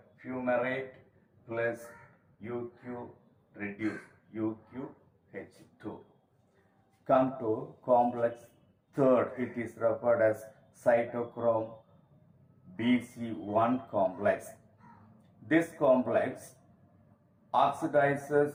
plus UQ reduced, UQH2. Come to complex third, it is referred as cytochrome BC1 complex. This complex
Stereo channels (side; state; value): both; identical; correlation 1.00